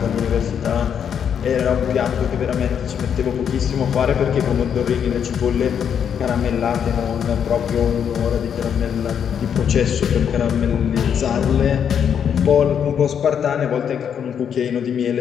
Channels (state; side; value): quieter; right; 8.1 dB